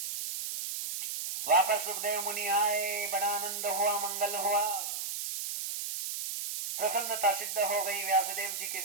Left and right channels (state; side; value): noise; right; hiss, 4 dB below the sound